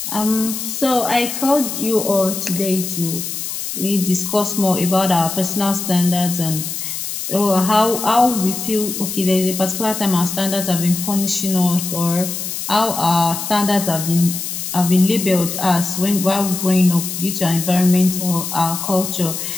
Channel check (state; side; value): noise; left; hiss, 5 dB below the sound